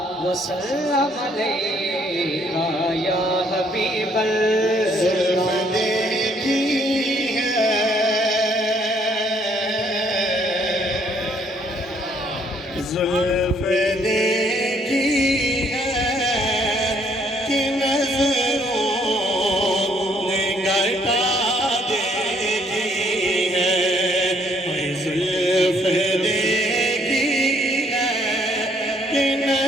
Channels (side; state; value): both; normal; correlation 0.66